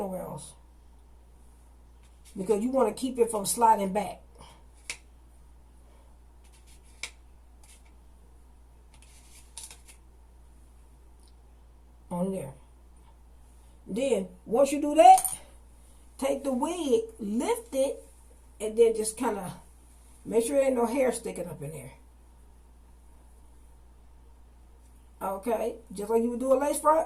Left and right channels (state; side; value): identical; both; correlation 1.00